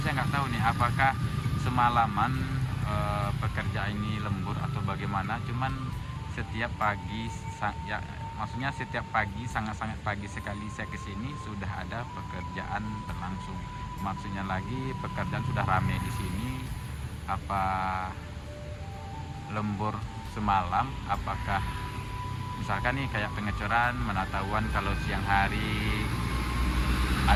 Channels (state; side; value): identical; both; correlation 1.00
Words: saya nggak tahu nih apakah semalaman pekerja ini lembur atau bagaimana. Cuman setiap pagi ya, maksudnya setiap pagi, sangat-sangat pagi sekali saya kesini sudah ada pekerjaan berlangsung. Maksudnya lagi pekerjaan sudah ramai di sini. Apa lembur semalam? Apakah misalkan nih kayak pengecoran, menatahuan kalau siang hari